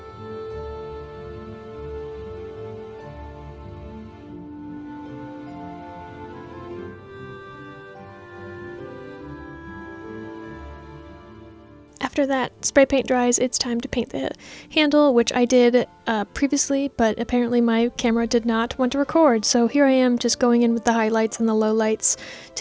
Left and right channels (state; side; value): identical; both; correlation 1.00